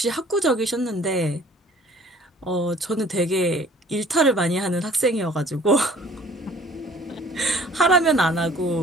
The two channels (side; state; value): both; normal; correlation 0.53